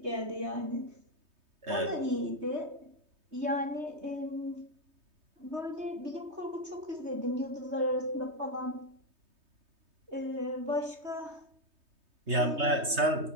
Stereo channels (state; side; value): late; left; 3.2 ms